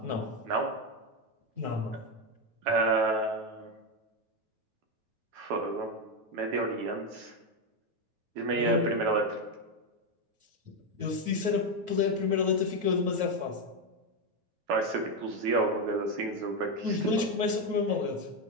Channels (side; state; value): left; late; 9.2 ms